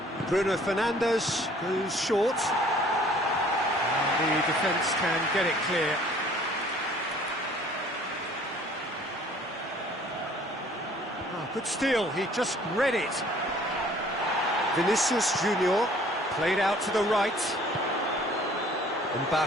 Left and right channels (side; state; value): both; normal; correlation 0.55